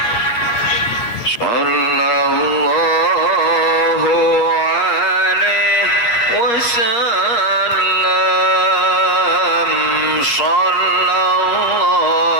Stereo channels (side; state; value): right; late; 8.4 ms